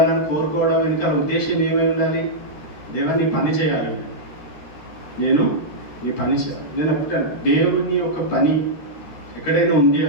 కోరుకోవడం వెనుక ఉద్దేశం ఏమై ఉండాలి? దేవాన్ని పని చేయాలి, నేను నీ పని చేయాలి. నేను అనుకుంటాను, దేవుని యొక్క పని ఎక్కడైనా ఉంది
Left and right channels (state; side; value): late; right; 13 ms